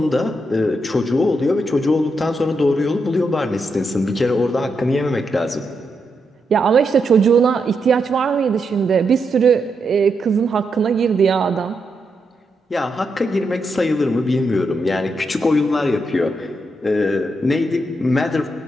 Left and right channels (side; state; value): both; normal; correlation 0.83